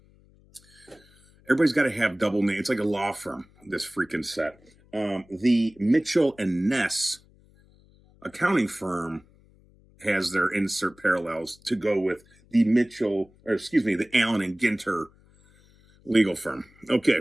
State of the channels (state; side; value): noise; left; hum, 29 dB below the sound